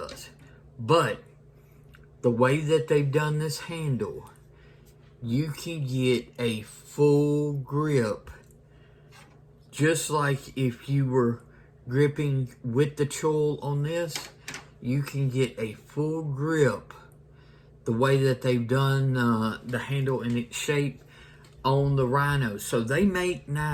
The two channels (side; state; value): both; identical; correlation 1.00